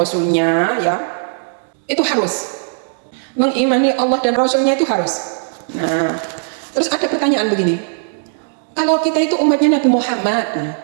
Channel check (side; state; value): left; silent; digital silence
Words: ya, itu harus mengimani Allah dan Rasulnya, itu harus. Nah, terus ada pertanyaan begini, kalau kita itu umatnya Nabi Muhammad,